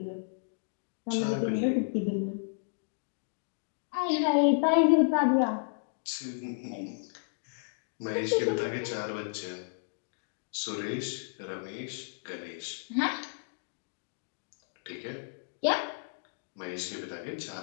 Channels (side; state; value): right; silent; digital silence